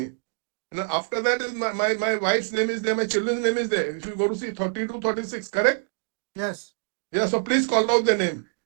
And after that is my wife's name is there, my children's name is there. If you go to see 32, 36, correct? Yes. Yeah, so please call out the name.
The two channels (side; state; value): left; silent; 62 dB below the other